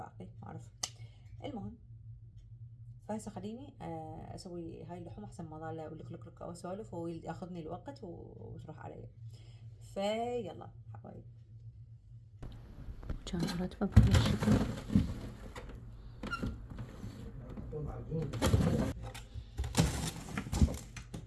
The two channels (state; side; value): identical; both; correlation 1.00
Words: ما اعرف. المهم، فهسه خليني اسوي هاي اللحوم احسن ما ظل لك لك واسولف وياخذني الوقت وتروح علي. فيلا حبايبي، كان راتبه بهالشكل.